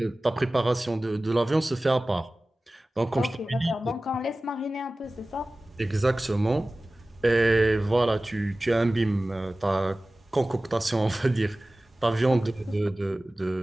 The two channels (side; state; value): both; normal; correlation 0.97